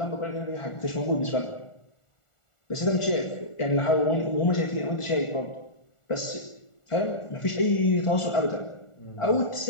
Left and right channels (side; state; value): right; late; 1.4 ms